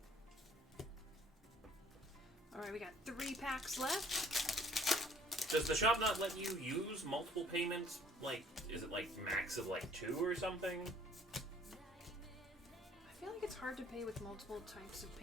Alright, we got 3 packs left. Does the shop not let you use multiple payments? Like, is it like max of like 2 or something? I feel like it's hard to pay with multiple types of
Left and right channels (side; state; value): both; normal; correlation 0.57